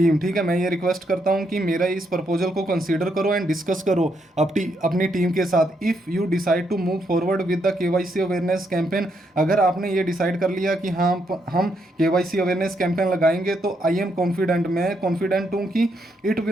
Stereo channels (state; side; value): normal; both; correlation 0.77